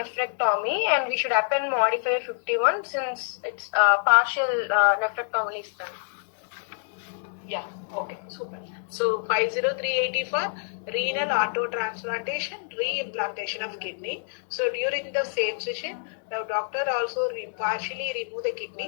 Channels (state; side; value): silent; right; digital silence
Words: and we should append modifier 51 since it's partial nephrectomy is done. Yeah, okay, super. So 50380 for renal autotransplantation, reimplantation of kidney. So during the same session, the doctor also partially remove the